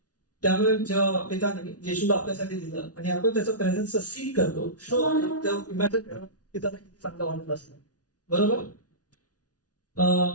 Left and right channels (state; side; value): late; right; 0.68 ms